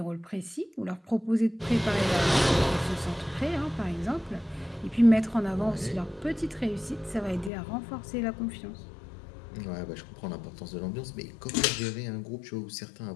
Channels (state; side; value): drops out; right; at 7.5 s